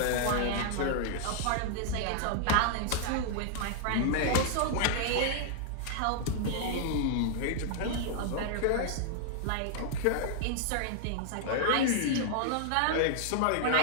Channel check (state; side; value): different; both; correlation -0.01